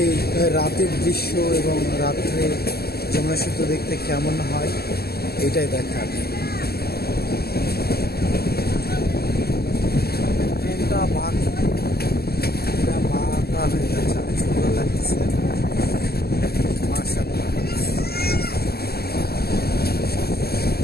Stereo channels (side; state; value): right; late; 0.46 ms